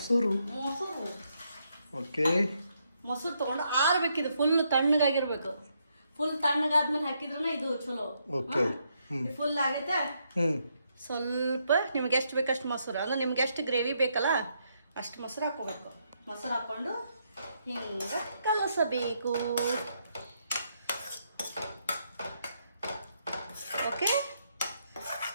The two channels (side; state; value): both; inverted; correlation -0.77